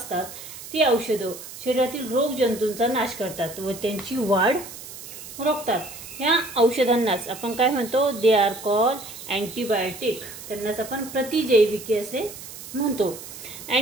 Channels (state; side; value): noise; right; hiss, 13 dB below the sound